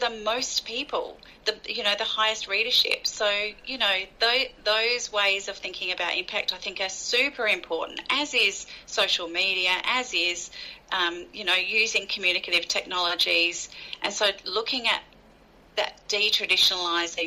most people, the highest readership. So, those ways of thinking about impact I think are super important, as is social media, as is, using communicative technologies. And so looking at that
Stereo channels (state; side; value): identical; both; correlation 1.00